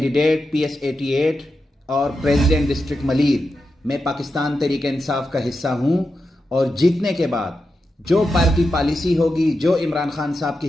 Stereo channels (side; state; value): both; normal; correlation 0.89